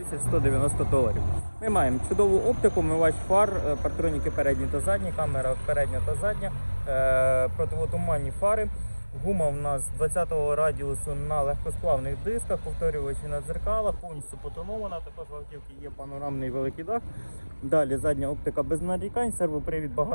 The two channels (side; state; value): both; inverted; correlation -1.00